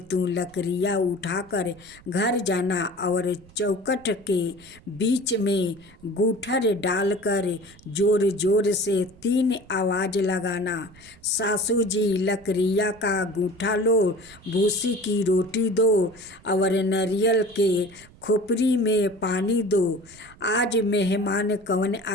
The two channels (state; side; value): noise; right; rumble, 24 dB below the sound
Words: तू लकड़ियाँ उठाकर घर जाना और चौखट के बीच में गूठर डालकर जोर जोर से 3 आवाज़ लगाना, सासू जी लकड़ियाँ का गूठा लो, भूसी की रोटी दो और नारियल के खोपड़ी में पानी दो। आज मेहमान कौन